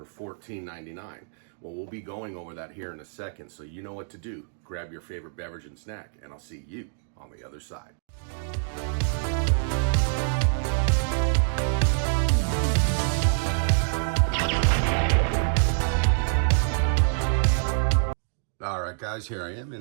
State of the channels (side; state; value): left; silent; digital silence